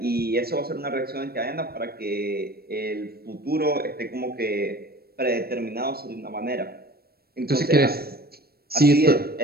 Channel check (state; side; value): late; left; 0.45 ms